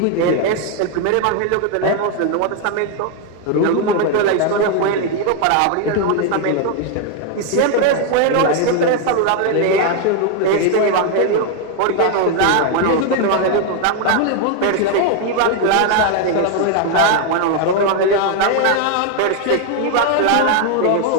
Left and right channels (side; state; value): both; different; correlation 0.01